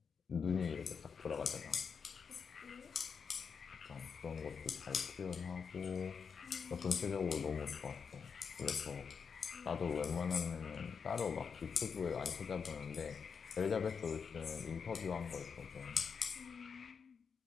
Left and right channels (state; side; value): quieter; right; 6.1 dB